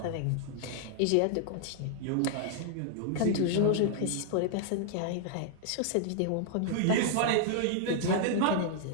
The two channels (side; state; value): both; different; correlation -0.01